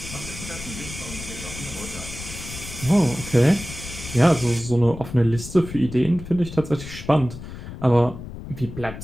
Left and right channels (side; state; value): left; noise; rumble, 11 dB below the sound